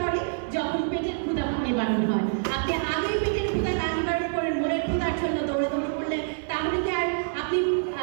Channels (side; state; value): left; silent; digital silence